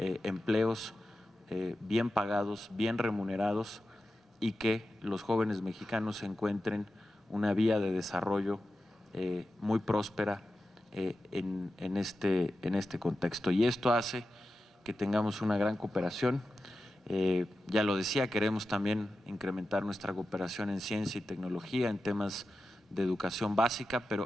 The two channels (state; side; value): normal; both; correlation 0.92